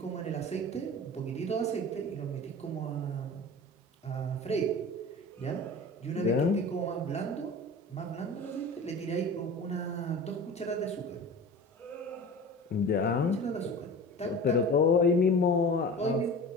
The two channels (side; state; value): both; normal; correlation 0.36